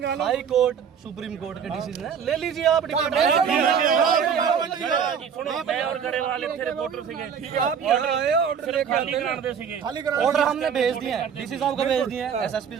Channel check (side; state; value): left; quieter; 7.3 dB